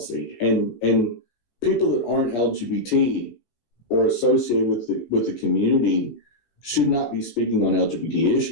And people that aren't LGBT or associated with the community should not be speaking on LGBT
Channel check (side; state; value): right; late; 17 ms